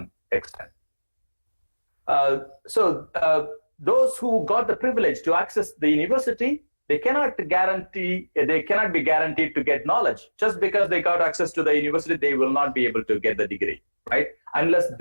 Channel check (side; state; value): both; inverted; correlation -1.00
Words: extent. So those who got the privilege to access the university, they cannot be guaranteed to get knowledge. Just because they got access to the university, they will not be able to get the degree, right? Unless